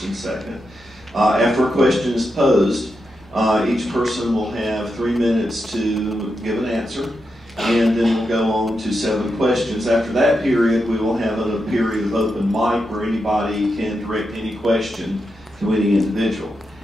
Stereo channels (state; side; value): normal; both; correlation 0.86